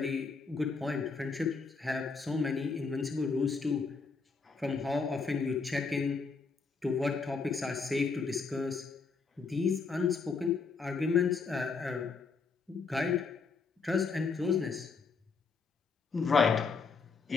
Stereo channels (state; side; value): quieter; right; 4.7 dB